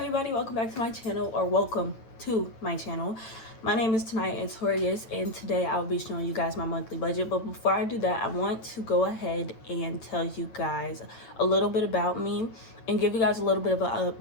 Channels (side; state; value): right; late; 8.9 ms